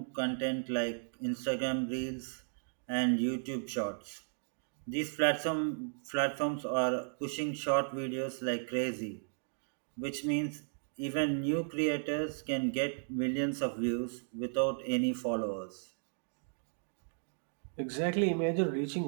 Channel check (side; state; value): left; silent; digital silence